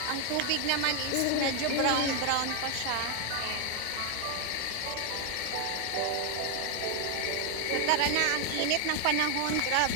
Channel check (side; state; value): both; different; correlation 0.00